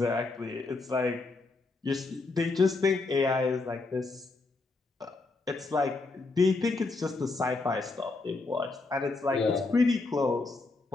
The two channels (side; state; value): right; quieter; 3.5 dB